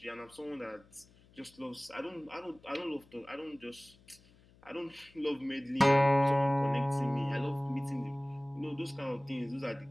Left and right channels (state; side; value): noise; left; hum, 27 dB below the sound